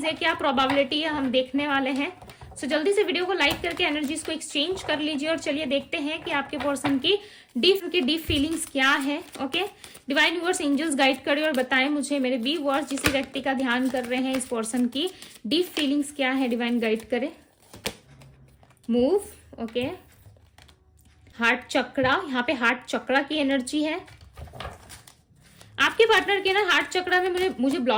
है, क्या प्रोबेबिलिटी है, हम देखने वाले हैं। सो जल्दी से वीडियो को लाइक करके एनर्जीज को एक्सचेंज कर लीजिए और चलिए देखते हैं कि आपके पर्सन की डीप फीलिंग्स क्या है। Okay, divine viewers, angels guide करें और बताएं मुझे मेरे व्यूअर्स जिस व्यक्ति का ध्यान कर रहे हैं, इस पर्सन की डीप फीलिंग्स क्या है। डिवाइन गाइड करें। मूव। ओके, हार्ट चक्रा, यहाँ पे हार्ट चक्रा की एनर्जी है। आपके पार्टनर के ना हार्ट चक्रा में मुझे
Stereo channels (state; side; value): identical; both; correlation 1.00